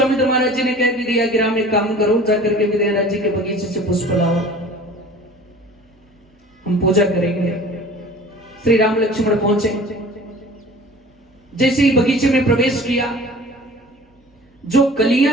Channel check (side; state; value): both; normal; correlation 0.44